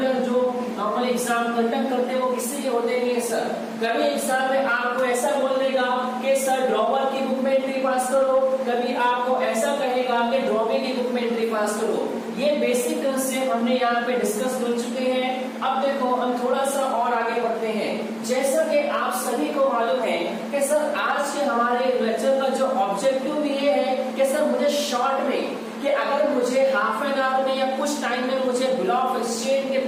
जो नॉर्मल एग्जाम कंडक्ट करते हैं वो किसी के होते नहीं है सर। कभी एग्जाम में आपको ऐसा बोल देगा कि सर ड्रॉवर की बुक में एंट्री पास करो, कभी आपको ऐसा कहेगा कि ड्रॉवी की बुक में एंट्री पास करो। ये बेसिक कंसेप्ट हमने यहाँ पे डिस्कस कर चुके हैं। अब देखो हम थोड़ा सा और आगे बढ़ते हैं। जैसा कि आप सभी को मालूम है कि सर आज के हमारे लेक्चर का जो ऑब्जेक्टिव भी ये है कि सर मुझे शॉर्ट में, कि अगर मुझे हाफ एन आवर में या कुछ टाइम में मुझे बिल ऑफ एक्सचेंज के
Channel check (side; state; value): both; identical; correlation 1.00